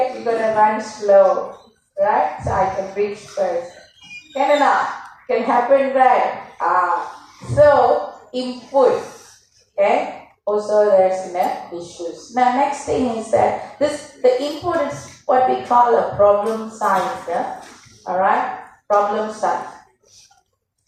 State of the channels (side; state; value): both; identical; correlation 1.00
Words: you're gonna run slow, right? So I can reach first. Can happen, right? So input, okay? Also there's issues. Now next thing is that the input is what we call a problem size, alright? Problem size.